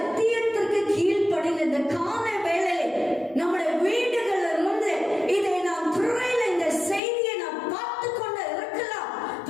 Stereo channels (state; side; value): drops out; right; at 7.0 s